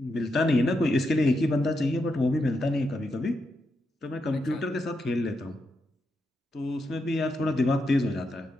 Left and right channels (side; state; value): both; normal; correlation 0.84